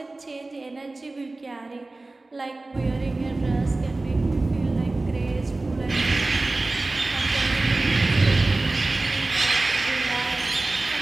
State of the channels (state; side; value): quieter; left; 3.1 dB